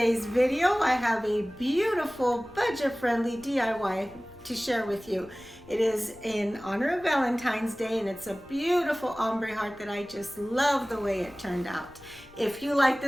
video, I have a beautiful budget-friendly DIY to share with you. It is in honor of Valentine's Day, and it's a beautiful ombre heart that I just love the way it turned out. If you like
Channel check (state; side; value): noise; left; rumble, 24 dB below the sound